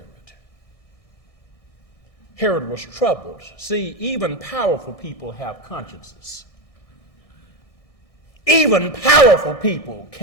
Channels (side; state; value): right; late; 1.6 ms